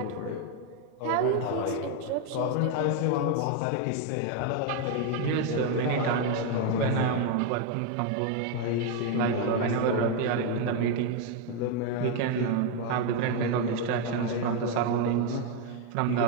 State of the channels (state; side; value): different; both; correlation 0.01